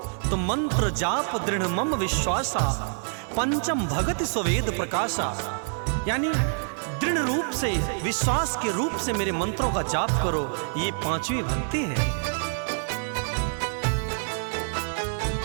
तो मंत्र जाप दृढ़ मम विश्वासा, पंचम भगति स्ववेद प्रकाशा। यानी दृढ़ रूप से, विश्वास के रूप से मेरे मंत्रों का जाप करो, ये पांचवी भक्ति है।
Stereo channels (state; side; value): silent; left; 61 dB below the other